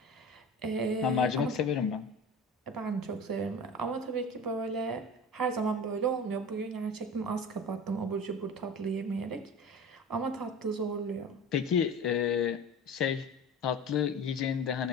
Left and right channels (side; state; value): both; normal; correlation 0.34